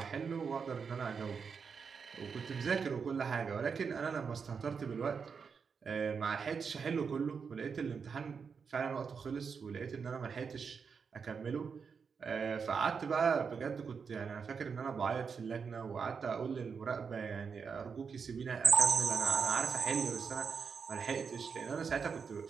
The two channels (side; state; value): left; quieter; 5.9 dB